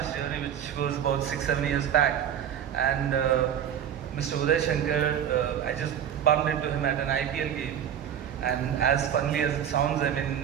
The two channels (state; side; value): quieter; left; 9.4 dB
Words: journey, which was about 6, 7 years back. And Mr. Uday Shankar, I just bumped into him at an IPL game. And as funnily as it sounds, I